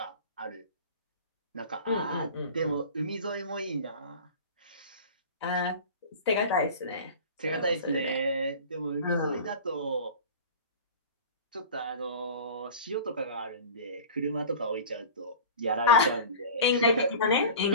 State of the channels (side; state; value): both; inverted; correlation -0.36